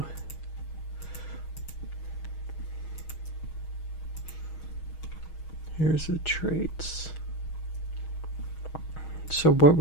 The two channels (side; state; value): right; late; 6.3 ms